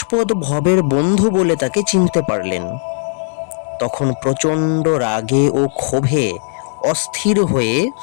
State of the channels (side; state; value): right; silent; digital silence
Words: ভবের বন্ধু বলে তাকে চিনতে পারলেন। তখন প্রচণ্ড রাগে ও ক্ষোভে অস্থির হয়ে